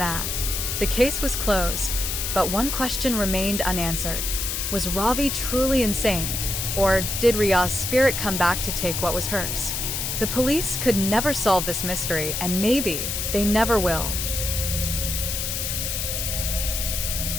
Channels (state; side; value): noise; left; hiss, 2 dB below the sound